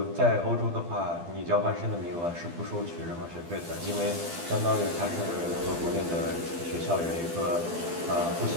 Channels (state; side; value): late; left; 12 ms